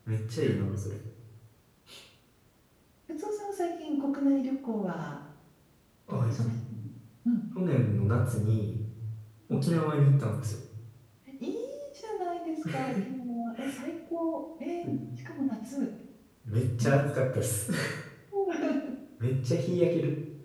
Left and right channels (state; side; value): identical; both; correlation 1.00